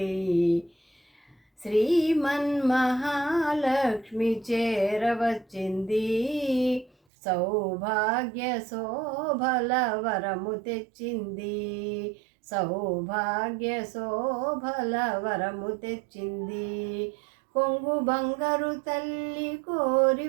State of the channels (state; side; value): drops out; left; at 6.9 s